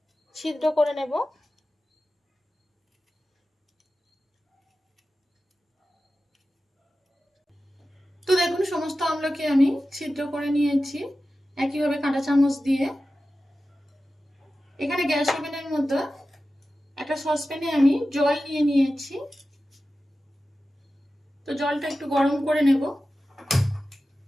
ছিদ্র করে নেব। তো দেখুন, সমস্ত আমলকি আমি ছিদ্র করে নিয়েছি একইভাবে কাঁটা চামচ দিয়ে। এখানে গ্যাস ওভেনের মধ্যে একটা সসপ্যানে আমি জল নিয়ে নিয়েছি। তো জলটা একটু গরম করে নেব,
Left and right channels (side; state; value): both; normal; correlation 0.94